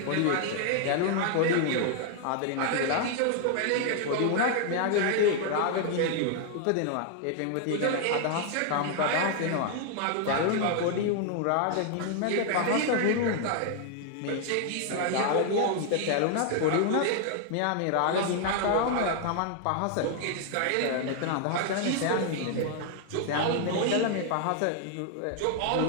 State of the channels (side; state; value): both; different; correlation 0.00